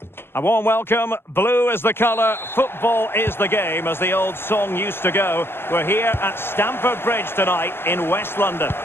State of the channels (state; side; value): late; right; 0.11 ms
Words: A warm welcome. Blue is the colour, football is the game, as the old song used to go. We're here at Stamford Bridge tonight in West London.